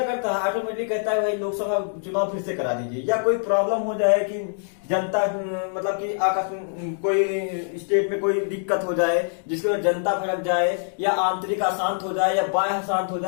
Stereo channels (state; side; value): silent; right; digital silence